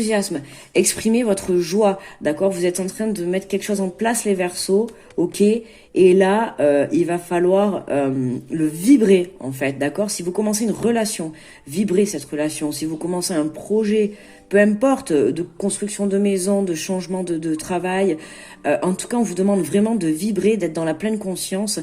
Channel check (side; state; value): both; identical; correlation 1.00